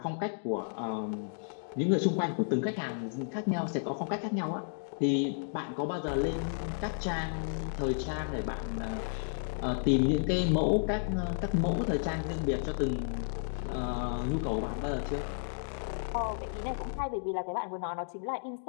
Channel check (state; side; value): silent; right; digital silence